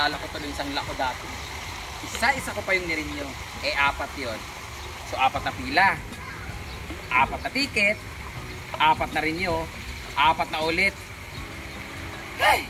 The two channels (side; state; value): both; identical; correlation 1.00